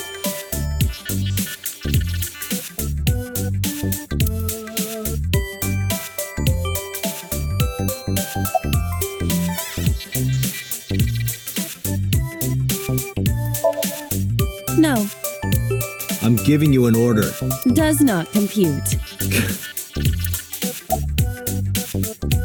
No, I'm giving you an order. does not compute.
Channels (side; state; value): both; identical; correlation 1.00